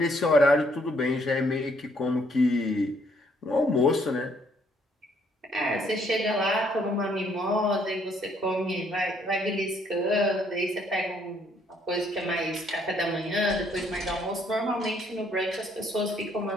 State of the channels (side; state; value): both; normal; correlation 0.67